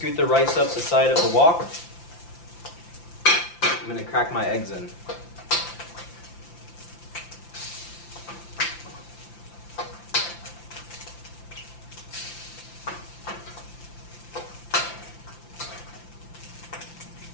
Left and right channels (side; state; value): right; late; 5.8 ms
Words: the rice up the side of the wok. I'm going to crack my eggs in.